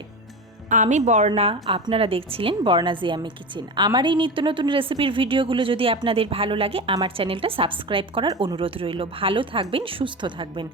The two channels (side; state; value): both; normal; correlation 0.25